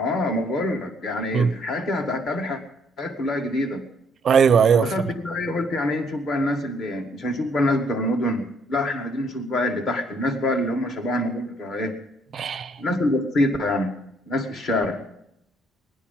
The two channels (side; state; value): both; normal; correlation 0.67